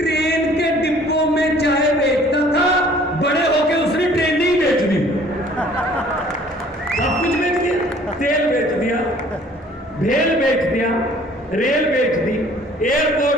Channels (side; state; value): both; normal; correlation 0.54